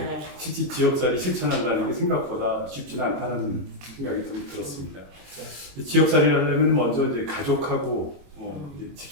실제 지역살이 실천한다는 게 생각보다 쉽지는 않다는 생각이 좀 들었습니다. 지역살이를 하려면 먼저 이제 가족하고 이제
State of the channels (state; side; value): late; left; 22 ms